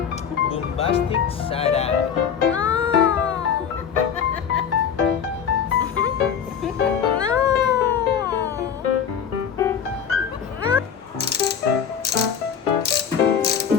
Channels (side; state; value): right; quieter; 7.6 dB